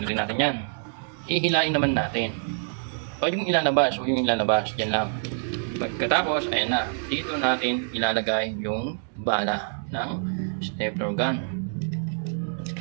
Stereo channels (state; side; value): silent; left; digital silence